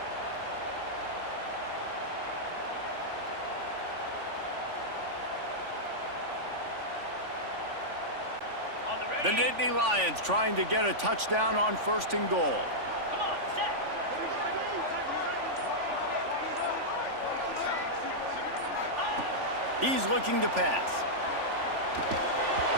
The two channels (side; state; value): left; late; 3.5 ms